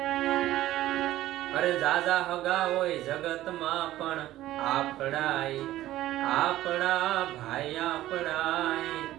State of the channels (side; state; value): left; quieter; 14.7 dB